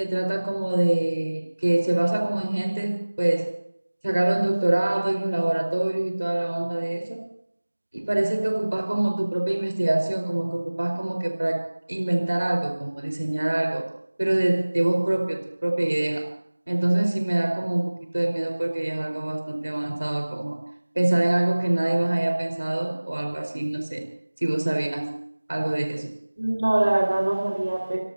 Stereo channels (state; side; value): inverted; both; correlation -1.00